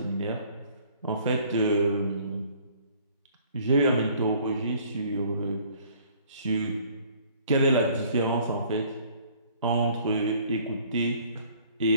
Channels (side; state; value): both; inverted; correlation -0.57